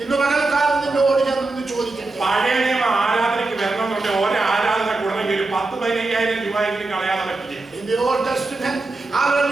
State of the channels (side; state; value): left; quieter; 3.3 dB